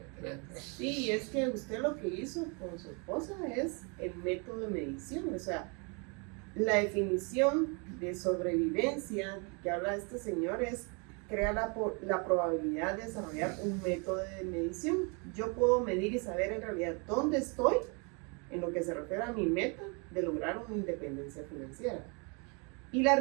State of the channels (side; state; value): left; quieter; 33.8 dB